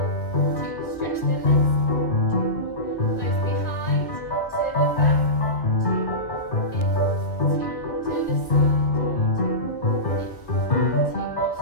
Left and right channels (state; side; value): late; right; 1.4 ms